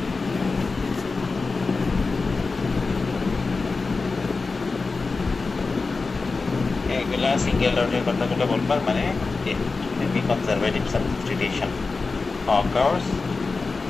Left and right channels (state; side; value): quieter; right; 4.1 dB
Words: এইগুলা সিঙ্গেল ডটের কথাগুলো বলবার মানে conservative substitution occurs